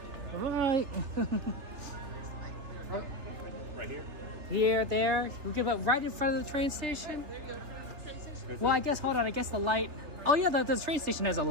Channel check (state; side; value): late; left; 3.4 ms